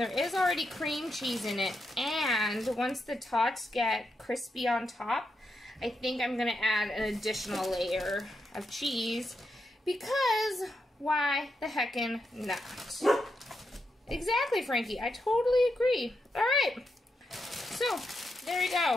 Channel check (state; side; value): normal; both; correlation 0.84